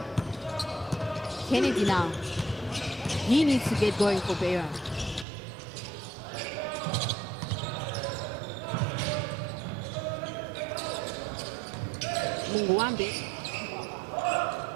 Kennedy now. He needs to get going for Beira. Munguwambe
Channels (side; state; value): left; drops out; at 5.2 s